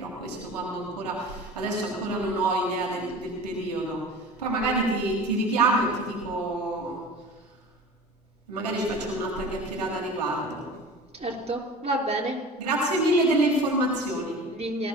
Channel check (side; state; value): both; normal; correlation 0.37